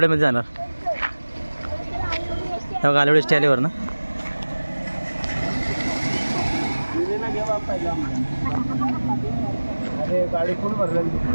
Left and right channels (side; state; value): both; inverted; correlation -1.00